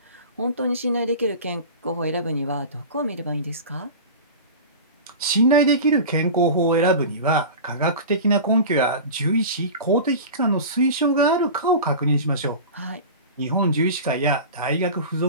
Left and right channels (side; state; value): both; inverted; correlation -0.32